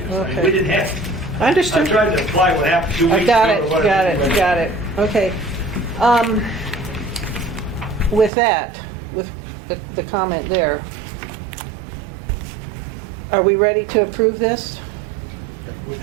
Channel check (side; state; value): left; drops out; at 8.3 s